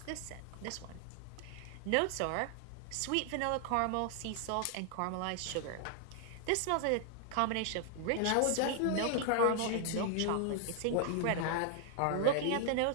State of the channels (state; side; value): different; both; correlation 0.00